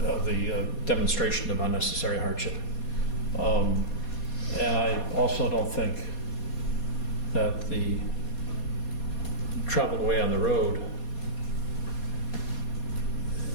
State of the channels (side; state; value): right; late; 4.2 ms